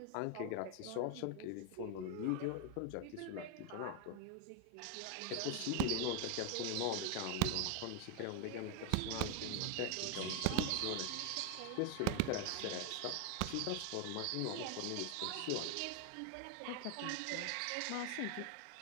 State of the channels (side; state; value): both; different; correlation 0.01